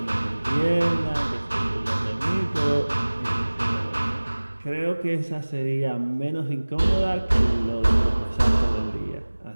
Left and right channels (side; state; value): both; inverted; correlation -1.00